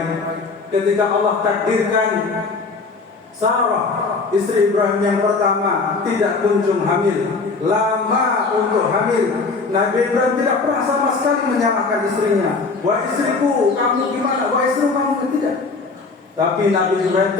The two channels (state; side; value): quieter; right; 4.2 dB